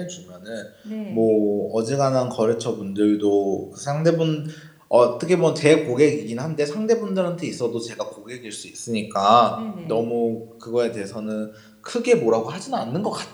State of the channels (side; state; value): both; identical; correlation 1.00